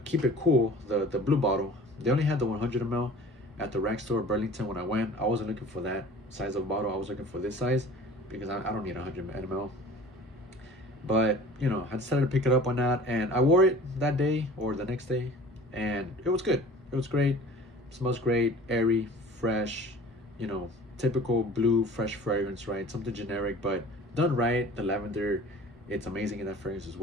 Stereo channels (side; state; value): both; normal; correlation 0.44